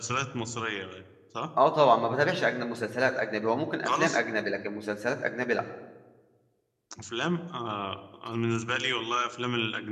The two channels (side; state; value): both; identical; correlation 1.00